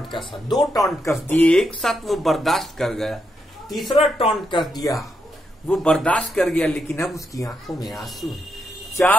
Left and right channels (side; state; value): both; normal; correlation 0.82